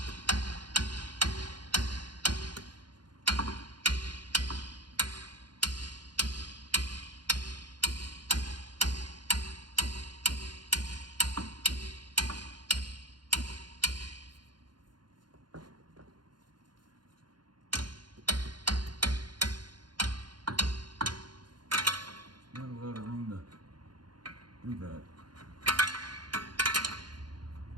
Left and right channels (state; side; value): late; left; 0.71 ms